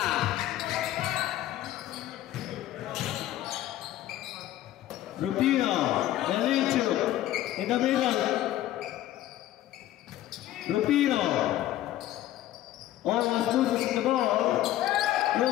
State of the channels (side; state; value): right; quieter; 13.8 dB